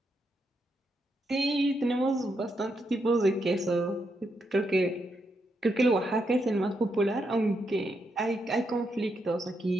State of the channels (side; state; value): both; normal; correlation 0.81